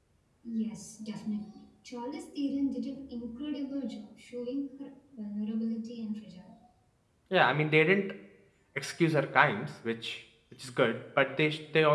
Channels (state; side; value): identical; both; correlation 1.00